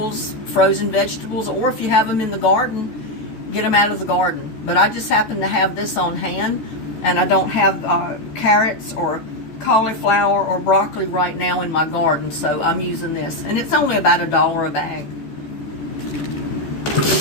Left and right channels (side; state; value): right; late; 13 ms